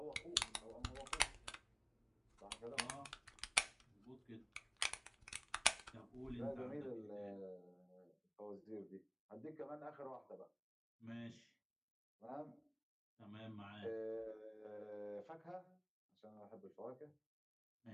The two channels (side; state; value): both; identical; correlation 1.00